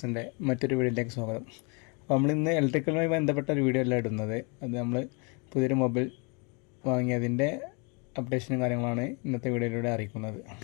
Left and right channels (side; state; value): right; quieter; 33.4 dB